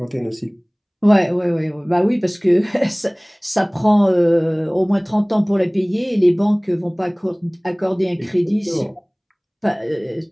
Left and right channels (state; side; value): identical; both; correlation 1.00